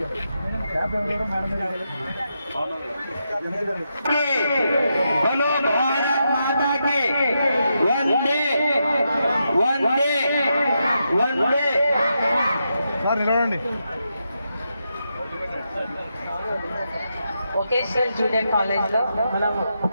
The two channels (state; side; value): inverted; both; correlation -0.84